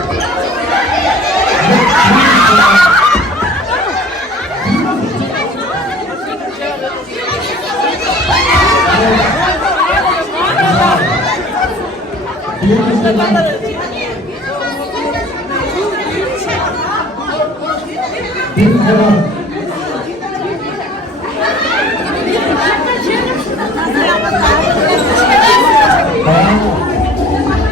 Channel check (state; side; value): normal; both; correlation 0.49